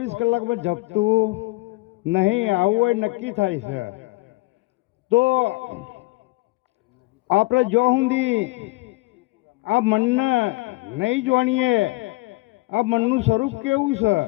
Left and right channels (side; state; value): right; quieter; 23.4 dB